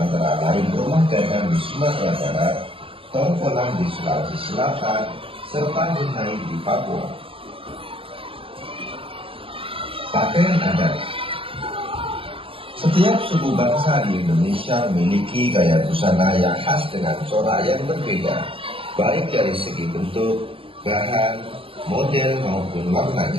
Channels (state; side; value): late; left; 0.26 ms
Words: lain rumah gadang di Sumatera Barat, Tongkolang di Sulawesi Selatan, serta Hunai di Papua. Pakaian adat. Setiap suku bangsa di Indonesia memiliki gaya busana yang khas dengan corak yang berbeda, baik dari segi bentuk, bahan, model maupun